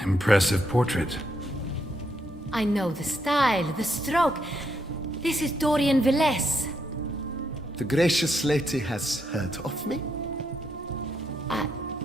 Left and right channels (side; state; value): both; normal; correlation 0.78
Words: Impressive portrait. I know the style, the stroke. This is Dorian Velez. The gracious lady has heard of me?